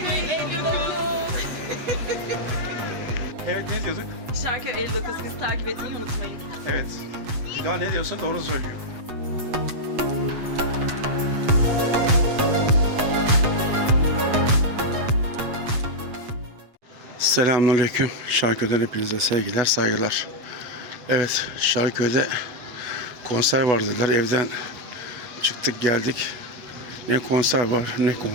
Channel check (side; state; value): left; late; 8.1 ms